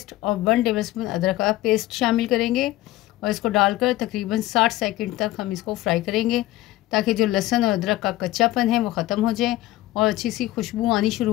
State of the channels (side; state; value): right; quieter; 16.5 dB